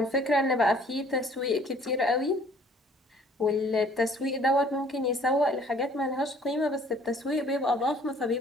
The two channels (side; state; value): both; normal; correlation 0.56